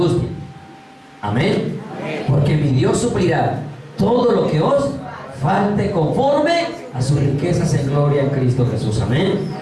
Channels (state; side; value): identical; both; correlation 1.00